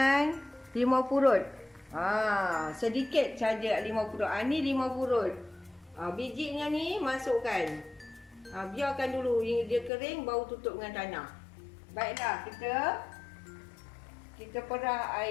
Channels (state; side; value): drops out; right; at 9.9 s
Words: limau purut. Sedikit saja limau purut. Ni limau purut. Bijinya ni masukkan. Biarkan dulu dia kering, baru tutup dengan tanah. Baiklah, kita perah